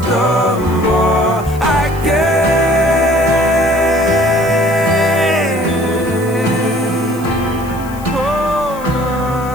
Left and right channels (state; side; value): noise; left; hiss, 20 dB below the sound